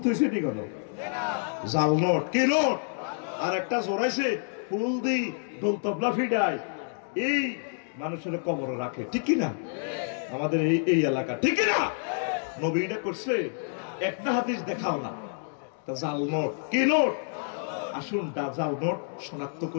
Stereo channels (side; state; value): right; silent; digital silence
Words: থুইছে ঠিক হলো, জাল নোট কি নোট, আর একটা জোরাইছে ফুল দি দোল তবলা ফিডায়, এই মানুষের কবর রাখে। ঠিক কিনা? আমাদের এই এলাকা, ঠিক কিনা? নবী এটা করছে, একটা হাদিস দেখাও না। জাল নোট কি নোট? আসুন জাল নোট শনাক্ত